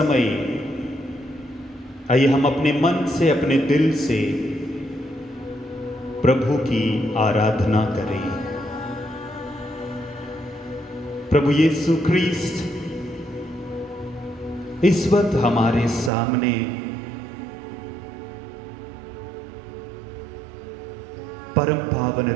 आइए हम अपने मन से, अपने दिल से प्रभु की आराधना करें। प्रभु यीशु ख्रीस्त इस वक्त हमारे सामने परम पावन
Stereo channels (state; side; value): drops out; left; at 16.1 s